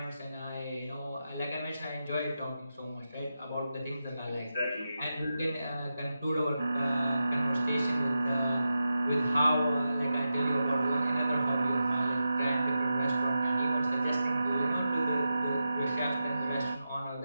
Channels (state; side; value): inverted; both; correlation -0.90